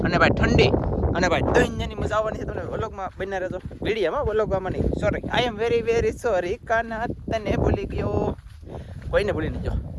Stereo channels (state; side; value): identical; both; correlation 1.00